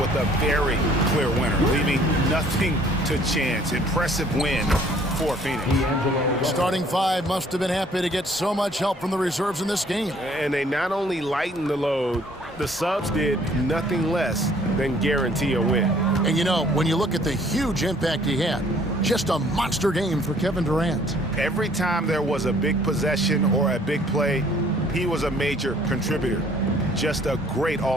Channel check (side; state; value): both; normal; correlation 0.58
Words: a very clear winner, leaving nothing to chance. Impressive win for Phoenix. Starting five must have been happy to get so much help from the reserves in this game. And they not only lightened the load, the subs did nothing less than guarantee a win. And you know, when you look at the huge impact he had, just a monster game for Kevin Durant. Every time there was a big possession or a big play, he was a major contributor. Just a great